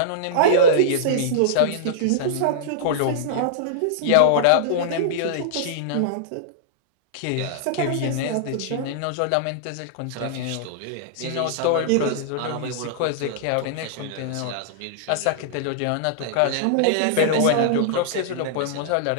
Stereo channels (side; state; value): both; different; correlation -0.02